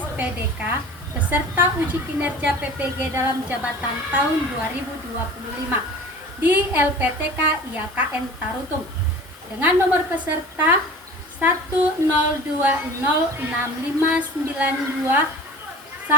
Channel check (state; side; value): normal; both; correlation 0.40